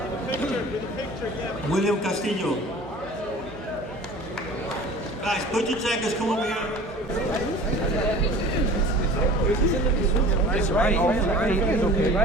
William Castillo. Guys, put your jackets, come over here. It's right. It's okay,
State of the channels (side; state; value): both; normal; correlation 0.42